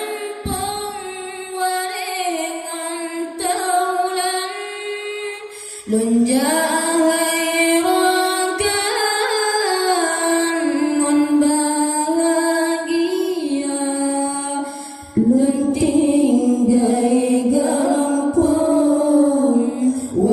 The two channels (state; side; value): identical; both; correlation 1.00